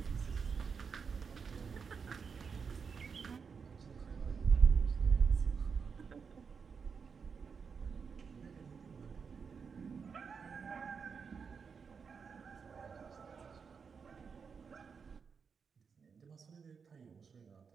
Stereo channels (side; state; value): left; quieter; 5.8 dB